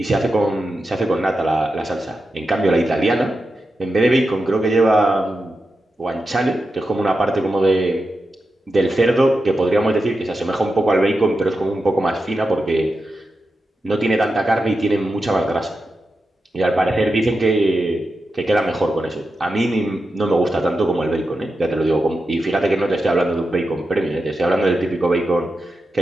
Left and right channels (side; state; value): both; normal; correlation 0.89